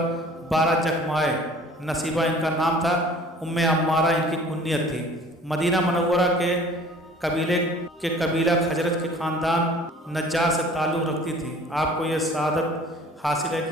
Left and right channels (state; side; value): normal; both; correlation 0.49